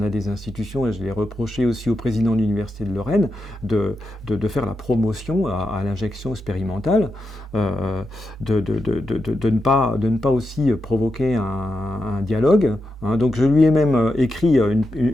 a des institutions, et je l'ai reproché aussi au président de l'Université de Lorraine, de faire la promotion à l'injection expérimentale, de ne pas aussi provoquer un dialogue. Hein. Donc je lui ai même écrit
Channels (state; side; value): normal; both; correlation 0.87